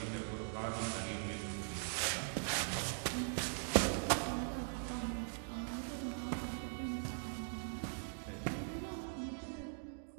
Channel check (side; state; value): left; silent; digital silence